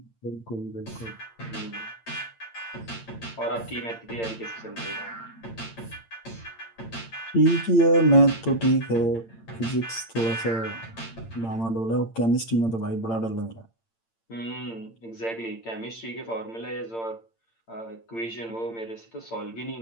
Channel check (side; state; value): right; late; 8.8 ms